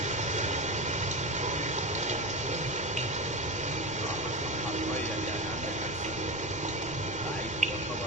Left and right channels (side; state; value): left; noise; rumble, 15 dB below the sound